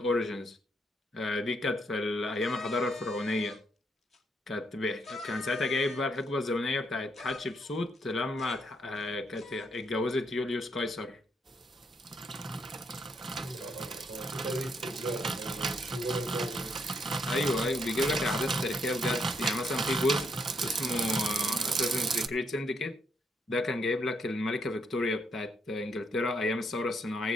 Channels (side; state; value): both; normal; correlation 0.74